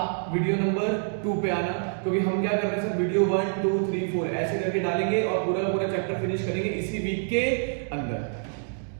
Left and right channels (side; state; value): left; silent; 60 dB below the other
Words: वीडियो नंबर 2 पे आना, क्योंकि हम क्या कर रहे हैं सर, वीडियो 1 2 3 4 ऐसे करके डालेंगे और पूरा का पूरा चैप्टर फिनिश करेंगे इसी वीक के अंदर।